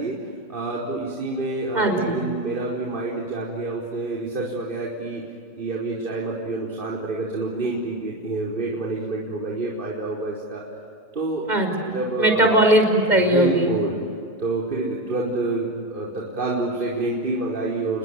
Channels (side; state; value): left; late; 2.1 ms